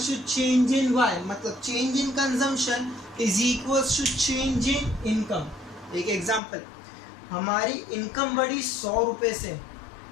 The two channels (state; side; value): drops out; right; at 6.4 s